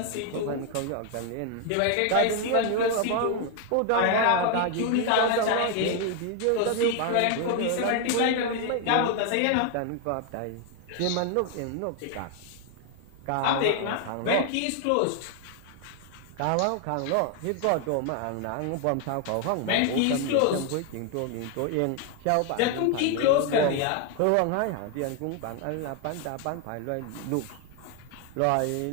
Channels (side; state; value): both; different; correlation 0.01